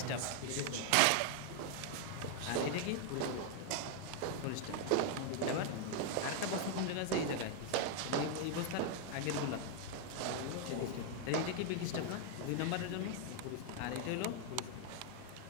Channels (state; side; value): different; both; correlation 0.00